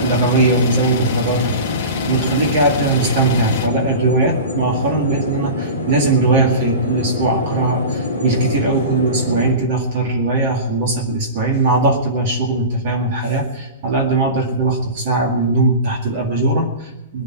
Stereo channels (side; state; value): both; inverted; correlation -0.30